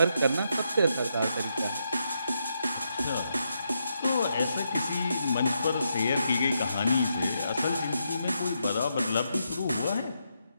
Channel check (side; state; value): both; inverted; correlation -0.81